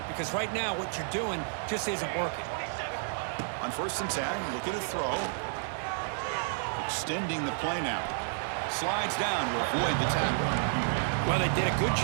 because right now what you're doing just isn't working. On 1st and 10, looking to throw. Extending the play now. Slides down to avoid the tackle. Well, they did a good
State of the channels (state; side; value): silent; left; digital silence